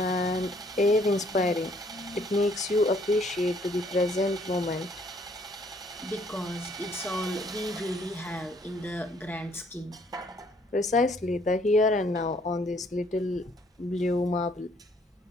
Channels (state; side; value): normal; both; correlation 0.64